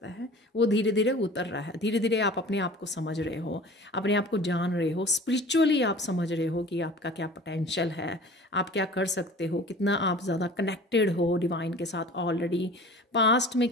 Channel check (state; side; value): normal; both; correlation 0.42